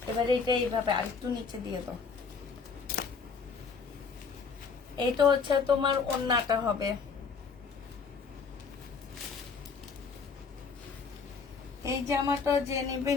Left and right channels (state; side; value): quieter; right; 5.3 dB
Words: এবারে এটা এইভাবে আরেকটু নিচে দিয়ে দাও। এটা হচ্ছে তোমার ওড়নাটা হবে। এই জামাটা যে